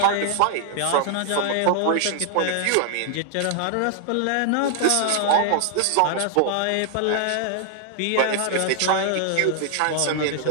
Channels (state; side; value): different; both; correlation 0.00